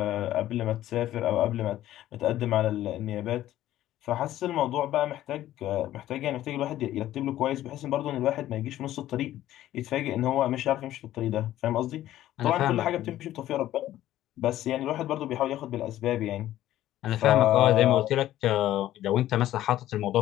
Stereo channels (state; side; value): quieter; right; 13.6 dB